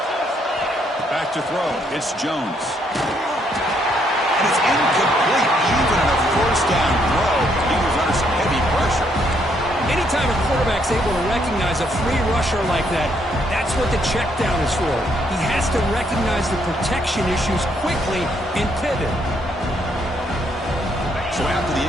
Back to throw. It's Jones. And it's incomplete. Even on a first down throw, he was under some heavy pressure. Anytime a quarterback's able to recognize a free rusher like that, that's what the check down is for. He has to recognize the protection issues quickly and pivot. So after the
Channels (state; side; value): normal; both; correlation 0.72